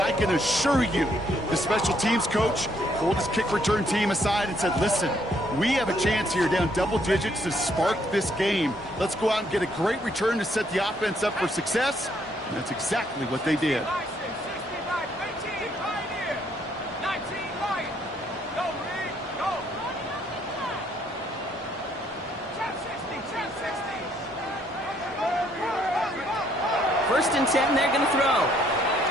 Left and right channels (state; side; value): normal; both; correlation 0.69